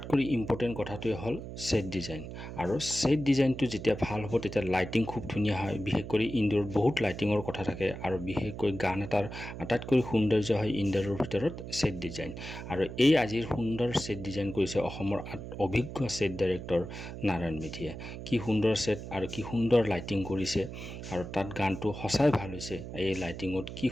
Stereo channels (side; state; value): right; noise; hum, 9 dB below the sound